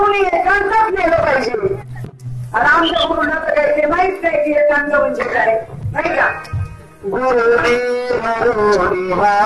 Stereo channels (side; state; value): both; identical; correlation 1.00